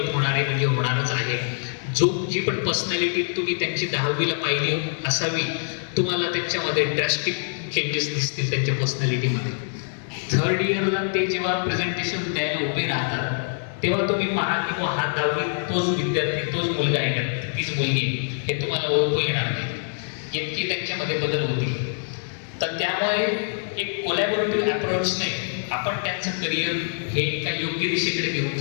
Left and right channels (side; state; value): right; silent; digital silence